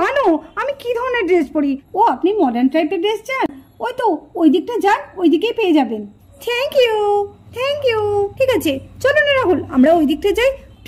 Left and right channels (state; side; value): identical; both; correlation 1.00